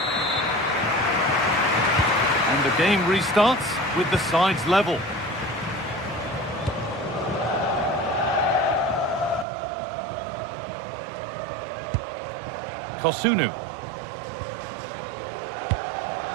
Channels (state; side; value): drops out; left; at 9.5 s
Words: And the game restarts with the sides level. Kosunu.